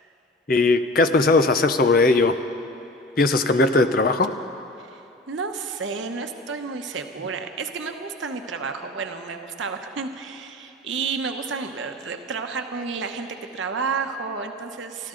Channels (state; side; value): normal; both; correlation 0.37